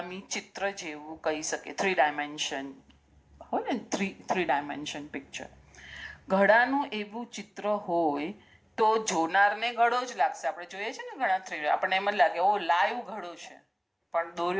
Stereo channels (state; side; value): identical; both; correlation 1.00